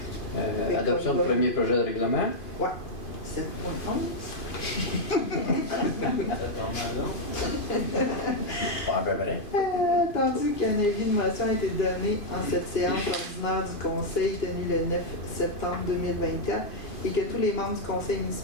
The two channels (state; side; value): late; right; 2.5 ms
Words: Adoption du premier projet de règlement. Ouais. 7.11. Pas à peu près. Attendu qu'un avis de motion a été donné en cette séance ordinaire du conseil tenue le 9 septembre 2024 et que tous les membres du conseil